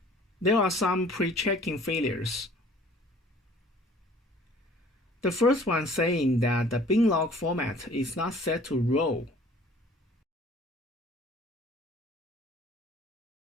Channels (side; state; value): both; normal; correlation 0.52